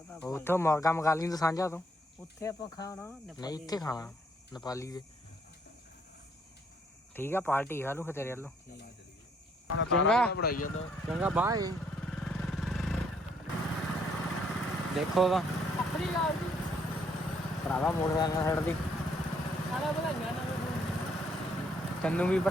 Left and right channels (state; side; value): normal; both; correlation 0.68